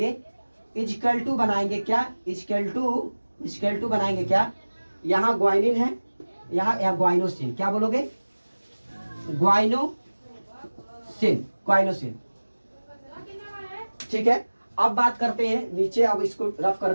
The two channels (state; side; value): inverted; both; correlation -1.00